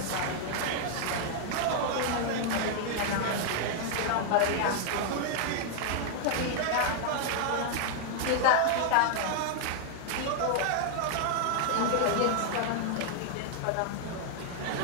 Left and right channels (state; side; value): different; both; correlation 0.00